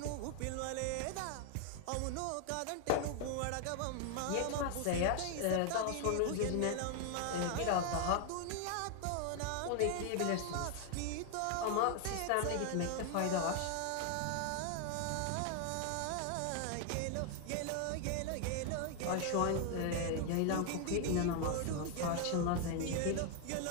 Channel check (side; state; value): both; different; correlation 0.00